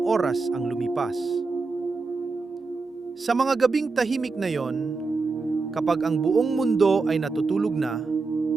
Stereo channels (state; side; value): quieter; left; 4.1 dB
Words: oras ang lumipas. Sa mga gabing tahimik na iyon, kapag ang buong mundo ay natutulog na,